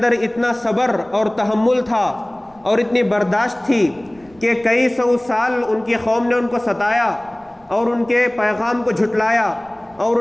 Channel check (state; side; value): noise; right; rumble, 29 dB below the sound